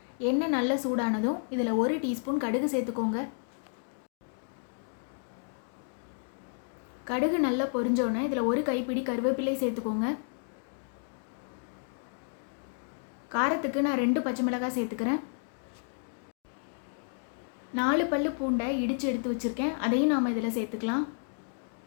எண்ணெய் நல்லா சூடானதும் இதில் 1 டீஸ்பூன் கடுகு சேர்த்துக்கோங்க. கடுகு நல்லா பொரிஞ்சோன்னே இதில் 1 கைப்பிடி கருவேப்பிலை சேர்த்துக்கோங்க. காரத்துக்கு நான் 2 பச்சை மிளகாய் சேர்த்துக்கிறேன். 4 பல்லு பூண்டை இடித்து எடுத்து வச்சுருக்கேன், அதையும் நாம் இதில் சேர்த்துக்கலாம்.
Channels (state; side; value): silent; right; digital silence